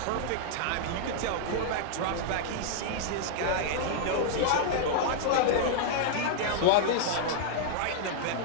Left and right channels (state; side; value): different; both; correlation -0.01